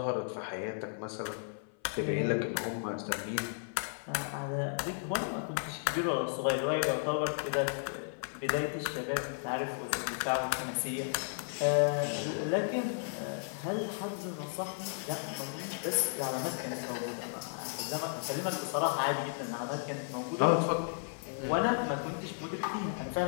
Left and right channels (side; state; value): right; silent; 55 dB below the other